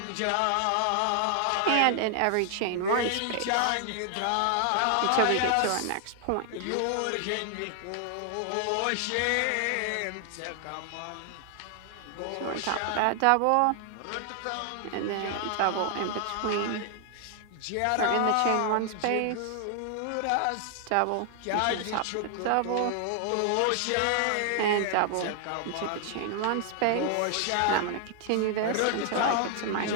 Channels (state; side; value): different; both; correlation 0.00